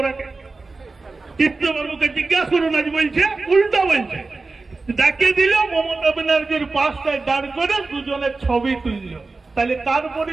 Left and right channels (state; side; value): quieter; left; 3.7 dB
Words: চিত্তবাবুকে জিজ্ঞাসা করুন, আজ বলছে উল্টা বলছে। ডাকিয়ে দিল, মমতা ব্যানার্জির পাশটায় দাঁড় করে দুজনের ছবি তুলল। তাহলে তার